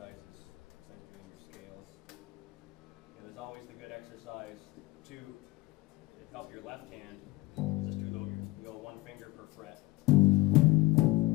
There's always the good exercise to help your left hand. Just do go one finger per fret.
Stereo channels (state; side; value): quieter; right; 19.8 dB